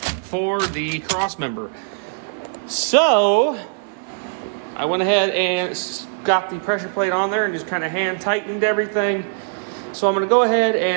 the cross member. So I went ahead and got the pressure plate on there and just kind of hand tightened everything. So I'm going to go ahead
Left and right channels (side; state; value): left; silent; 62 dB below the other